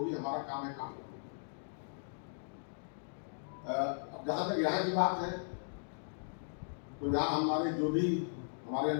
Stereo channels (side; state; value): right; silent; digital silence